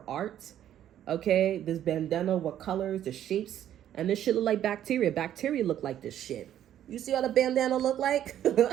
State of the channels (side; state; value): left; quieter; 11.1 dB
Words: art. Okay, this bandana, what colors, the shapes, and this shit look like bacteria. Bacteria look like this shit. You see what a bandana look like?